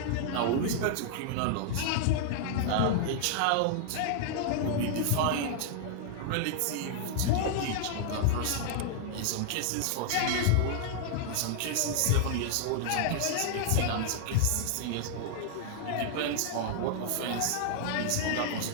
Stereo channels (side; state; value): both; different; correlation -0.01